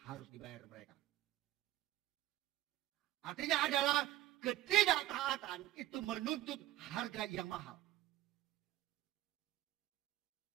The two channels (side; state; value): left; quieter; 14.6 dB